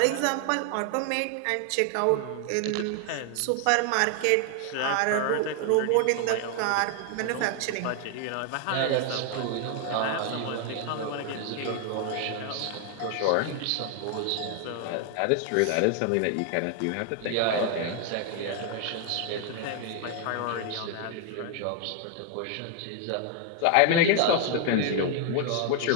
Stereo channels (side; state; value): both; different; correlation 0.00